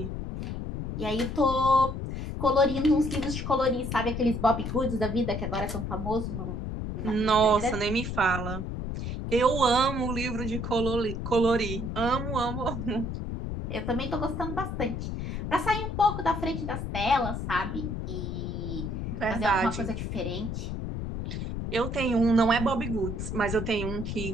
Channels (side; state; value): left; noise; rumble, 4 dB below the sound